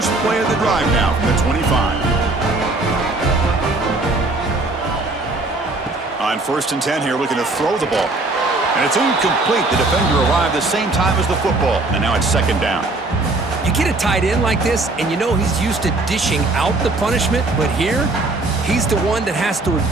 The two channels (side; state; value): left; quieter; 3.1 dB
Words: play of the drive now from the 25. On 1st and 10 here, looking to throw the ball. And it's incomplete. The defender arrived the same time as the football. And now it's 2nd down. You get a tight end like this, and you know he's used to dishing out the punishment, but here, he's the one that has to